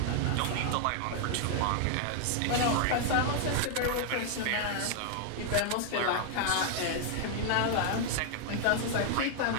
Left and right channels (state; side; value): different; both; correlation 0.00